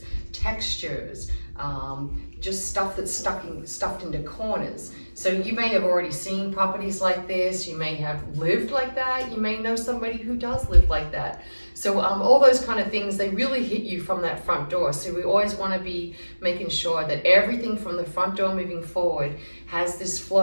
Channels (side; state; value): both; inverted; correlation -1.00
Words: textures, just stuff that's stuffed into corners. So you may have already seen properties like this, you may have lived like that, you may know somebody who does live like that. So all those kind of things, they really hit you from that front door. So we always want to be making sure that everything from the front door moving forward has this